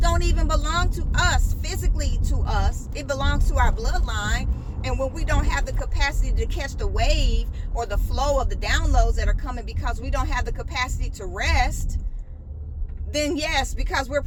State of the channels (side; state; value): both; identical; correlation 1.00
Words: even belong to us, physically to us. It belongs to our bloodline. And when we don't have the capacity to catch the wave or the flow of the downloads that are coming because we don't have the capacity to rest, then yes, because we're